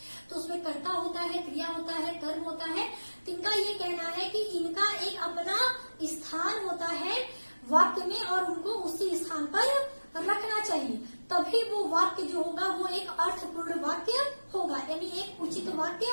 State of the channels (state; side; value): inverted; both; correlation -1.00